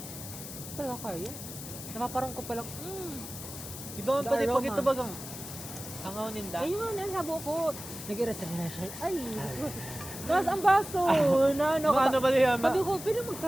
Talaga kaya. Napaparang ko palang, Di ba The pati pag aroma. ito bagang hangaw ninda? ayun, sabo ko. Nag-irasa na siya. Ay, tapos ang baso, na ano ka. Ano ba niya? Sabi ko, pwede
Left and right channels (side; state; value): left; noise; hiss, 11 dB below the sound